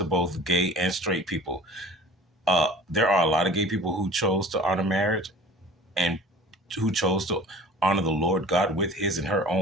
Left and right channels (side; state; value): both; normal; correlation 0.43